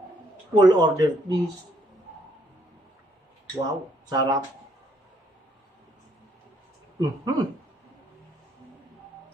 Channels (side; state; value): both; normal; correlation 0.69